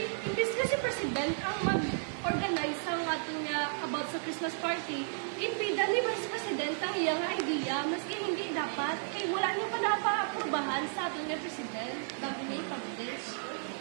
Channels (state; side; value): silent; left; 56 dB below the other